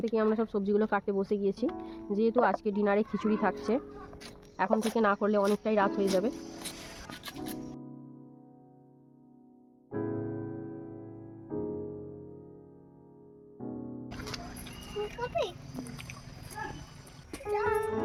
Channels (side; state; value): both; identical; correlation 1.00